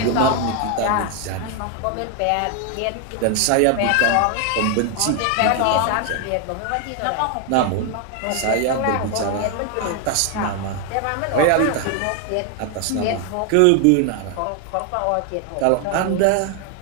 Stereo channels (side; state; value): both; different; correlation 0.00